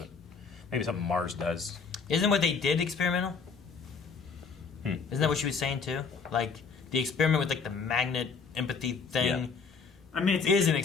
maybe something Mars does. Isn't what they did experimental? Isn't that what she was saying too? Like the experiment with like the magnet empathy thing. Yeah. I mean, it is an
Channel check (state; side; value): quieter; right; 5.2 dB